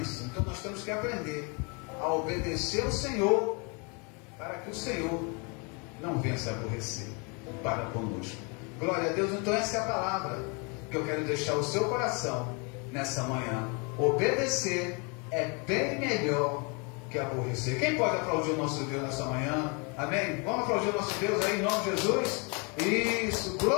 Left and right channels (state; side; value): quieter; right; 32.8 dB